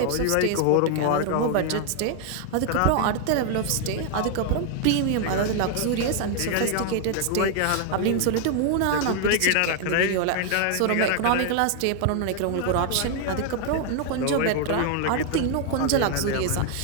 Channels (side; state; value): both; different; correlation 0.00